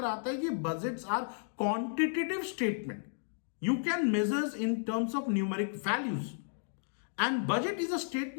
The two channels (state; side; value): silent; right; digital silence